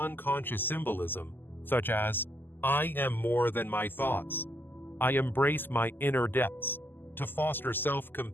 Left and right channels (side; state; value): right; late; 0.094 ms